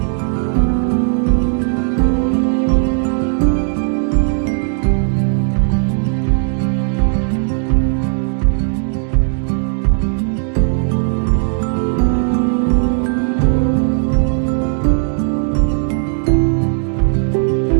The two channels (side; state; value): left; silent; digital silence